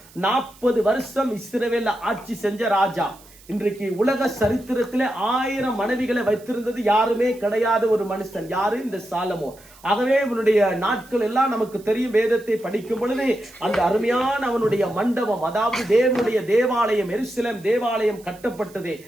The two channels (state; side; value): noise; right; hiss, 24 dB below the sound